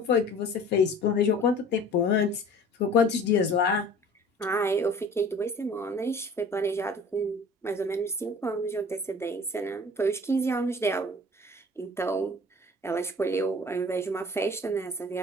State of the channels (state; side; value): normal; both; correlation 0.46